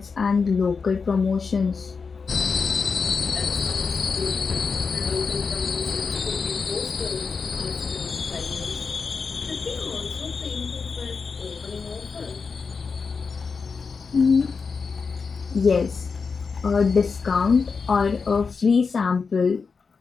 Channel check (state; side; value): quieter; right; 5.1 dB